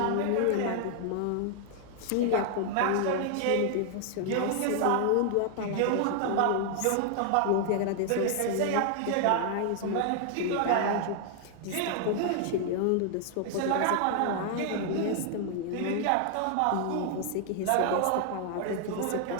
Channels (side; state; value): both; different; correlation 0.00